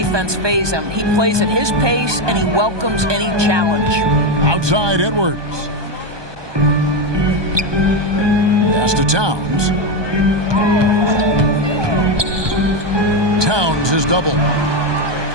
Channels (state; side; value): late; left; 1.2 ms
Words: phase him. He plays at his pace, and he welcomes any challenge. Outside Edwards. Pass to Towns. Towns is double.